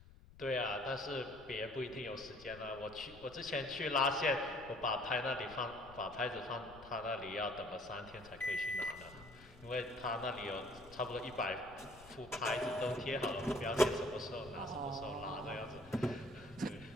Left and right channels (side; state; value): left; noise; rumble, 20 dB below the sound